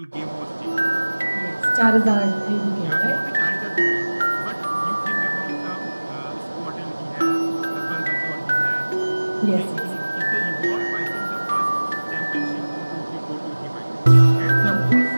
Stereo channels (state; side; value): inverted; both; correlation -1.00